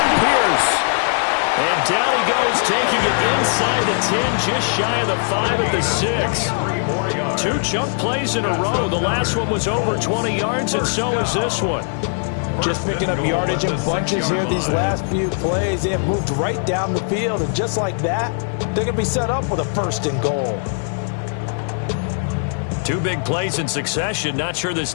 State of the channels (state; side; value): silent; right; digital silence